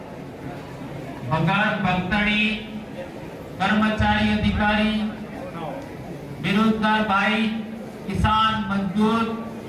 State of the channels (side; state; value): both; identical; correlation 1.00